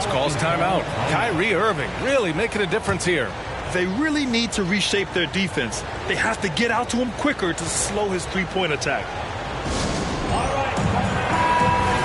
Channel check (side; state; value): both; identical; correlation 1.00